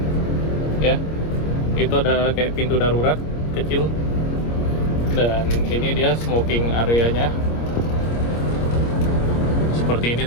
Ya, itu ada kayak pintu darurat kecil. Dan ini dia smoking areanya. Seperti ini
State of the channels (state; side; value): late; right; 26 ms